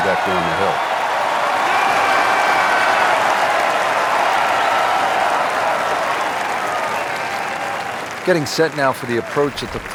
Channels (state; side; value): identical; both; correlation 1.00